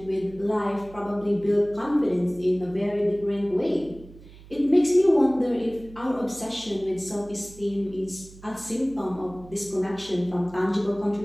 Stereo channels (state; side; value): noise; right; hum, 20 dB below the sound